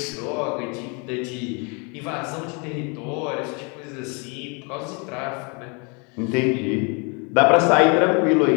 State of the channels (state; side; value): quieter; right; 33.2 dB